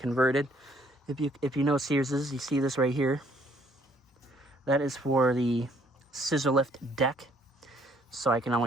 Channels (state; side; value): normal; both; correlation 0.64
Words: If you know Sears's, you see this right here. That is for the scissor lift deck, so I can